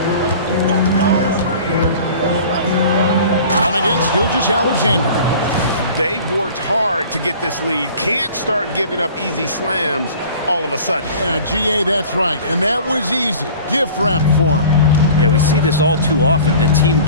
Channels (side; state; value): both; inverted; correlation -0.44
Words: Dunn against Gilgeous-Alexander. They've worked hard to get this lead. Can't start giving up easy slams all of a sudden. Yeah, GA, that's right. And that was easy. Gift wrap for him. Yeah, we see this all too often. The team